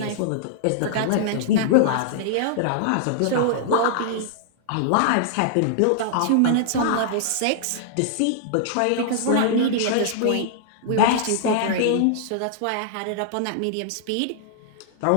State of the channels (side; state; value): both; different; correlation -0.01